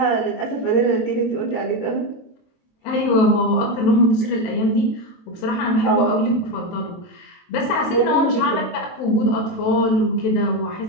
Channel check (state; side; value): late; right; 23 ms